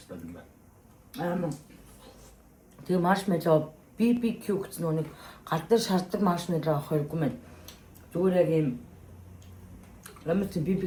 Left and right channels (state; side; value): identical; both; correlation 1.00